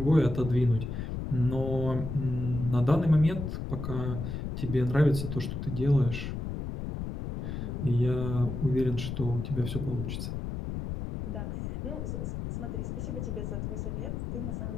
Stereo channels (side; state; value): left; noise; rumble, 5 dB below the sound